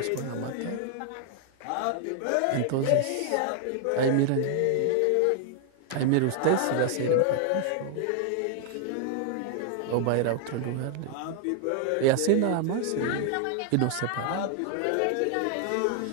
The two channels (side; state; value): both; different; correlation 0.00